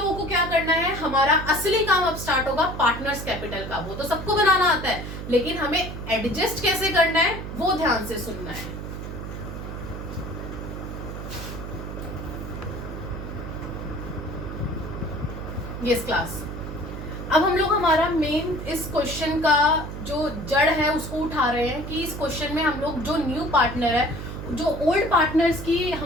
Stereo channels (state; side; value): noise; right; hum, 8 dB below the sound